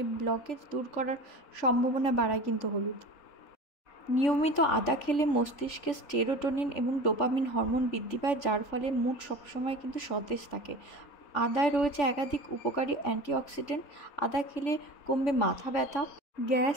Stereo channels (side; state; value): right; late; 3.5 ms